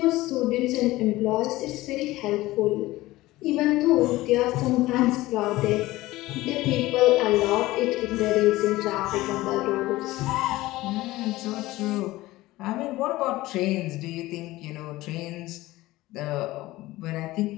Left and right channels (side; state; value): right; quieter; 18.0 dB